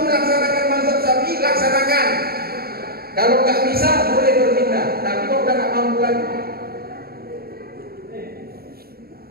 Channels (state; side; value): late; left; 0.44 ms